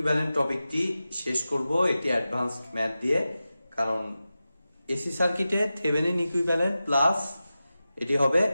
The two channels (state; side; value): inverted; both; correlation -0.94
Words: টপিকটি শেষ করব একটি অ্যাডভান্সড ম্যাথ দিয়ে। কারণ এসি সার্কিটে থেভেনিন ইকুইভ্যালেন্ট প্লাস এটি হবে